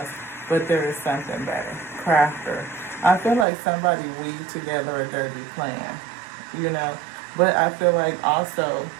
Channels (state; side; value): drops out; left; at 3.5 s